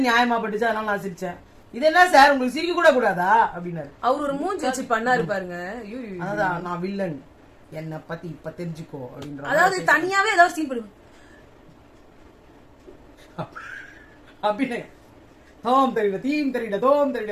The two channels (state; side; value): identical; both; correlation 1.00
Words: நியாயமா பட்டுச்சு, அதனால நான் சிரிச்சேன். இது என்ன சார் உங்களுக்கு சிரிக்க கூட கூடாதா அப்படின்னாரு. அவர் ஒரு மூஞ்சி வச்சு பண்ணாரு பாருங்க. அதான் நான் வில்லன், என்ன பத்தி இப்ப தெரிஞ்சுக்கோ அப்படின்ற. அதாவது தனியாவே ஏதாவது சீன் பண்ணுங்க அப்படின்னு. தோம் தெரியல, தீம் தெரியல, தோம்